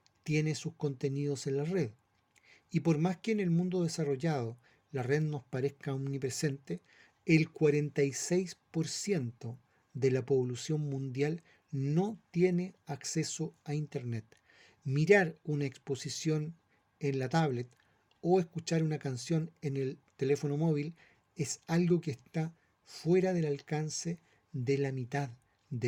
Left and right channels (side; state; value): both; identical; correlation 1.00